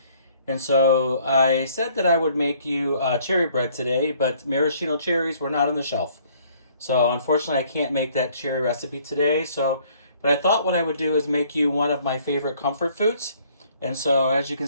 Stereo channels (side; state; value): both; inverted; correlation -0.61